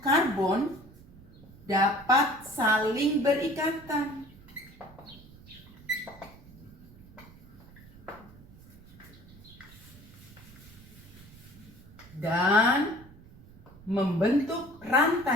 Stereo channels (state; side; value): noise; right; rumble, 21 dB below the sound